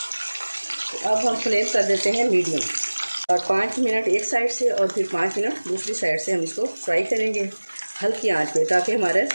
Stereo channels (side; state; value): both; inverted; correlation -1.00